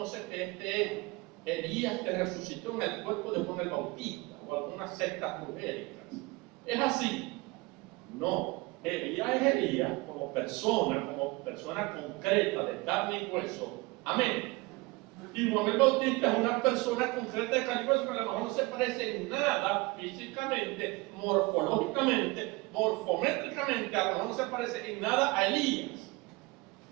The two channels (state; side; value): quieter; left; 24.3 dB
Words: que este es Elías que resucitó en el cuerpo de Juan el Bautista, o algunas sectas brujéricas. ¿Es así? No. Elías es Elías como persona concreta de carne y hueso. Amén. Y Juan el Bautista es una persona concreta de carne y hueso que a lo mejor no se parece en nada físicamente, morfológicamente, morfométricamente, a lo mejor no se parece en nada a Elías,